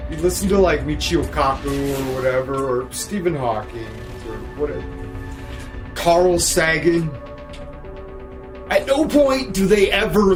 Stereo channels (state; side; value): identical; both; correlation 1.00